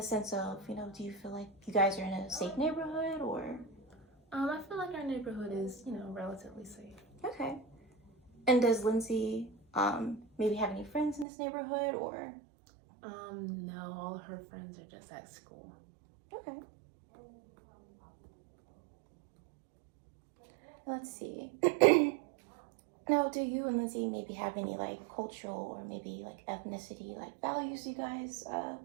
sense of, you know, do you feel like you guys are in a safe neighborhood or? I feel like our neighborhood is, you know, relatively safe. Okay. And does Lindsay maybe have any friends in this neighborhood or? No, all her friends are just at school. Okay. Let's see. Now, do you and Lindsay maybe have any like cultural or maybe like ethnicity like values you guys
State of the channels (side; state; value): left; drops out; at 11.2 s